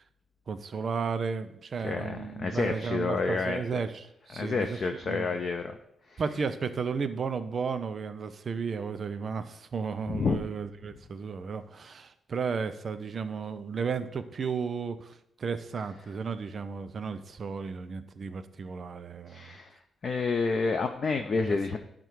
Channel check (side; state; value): both; normal; correlation 0.79